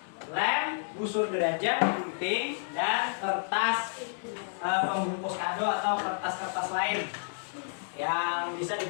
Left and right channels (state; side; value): silent; right; digital silence